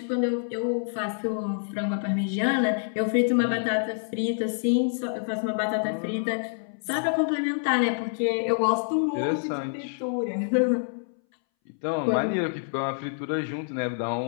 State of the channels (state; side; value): silent; right; 60 dB below the other